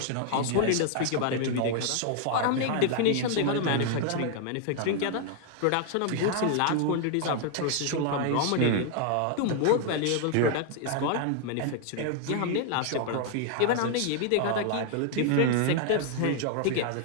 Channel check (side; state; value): both; different; correlation 0.00